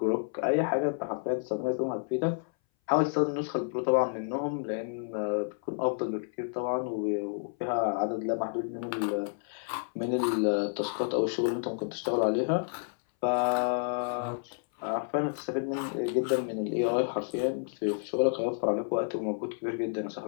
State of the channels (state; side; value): silent; right; 58 dB below the other